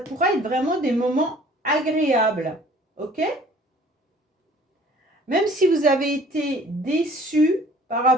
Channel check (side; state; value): both; normal; correlation 0.53